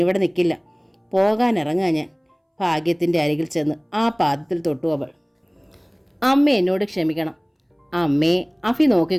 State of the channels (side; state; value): both; identical; correlation 1.00